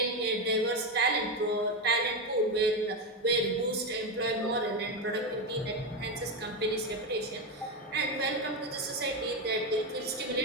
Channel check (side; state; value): both; normal; correlation 0.11